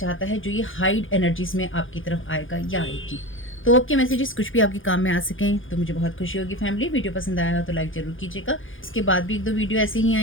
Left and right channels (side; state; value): right; late; 0.58 ms